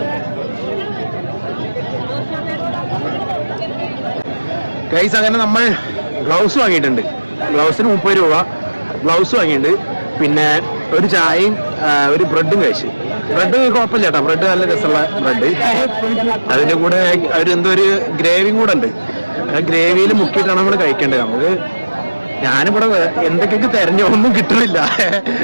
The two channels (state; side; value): inverted; both; correlation -1.00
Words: ഗൈസ്, അങ്ങനെ നമ്മൾ ഗ്ലൗസ് വാങ്ങിയിട്ടുണ്ട്. ഗ്ലൗസിന് 30 രൂപ ഗ്ലൗസ് വാങ്ങിയിട്ടുണ്ട്. പിന്നെ ഒരു ചായയും ഒരു ബ്രെഡും കഴിച്ച്. ബ്രെഡ് കുഴപ്പമില്ല കേട്ടോ, ബ്രെഡ് നല്ല രസമുള്ള ബ്രെഡ്. അതിന്റെ കൂടെ എന്തോ ഒരു ഗ്രേവിയും കൂടെ ഉണ്ട്. ആ ഗ്രേവിയിൽ മുക്കിയിട്ടാണ് നമ്മൾ കഴിക്കേണ്ടത്. നമുക്ക് ഞാനിവിടെ എന്തൊക്കെയൊക്കെ തെരഞ്ഞു ഒന്നും കിട്ടുന്നില്ല,